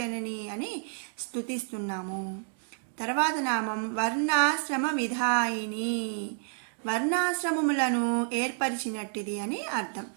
అని స్తుతిస్తున్నాము. తర్వాత నామం వర్ణాశ్రమ విధాయిని, వర్ణాశ్రమములను ఏర్పరిచినట్టిది అని అర్థం.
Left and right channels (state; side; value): silent; left; digital silence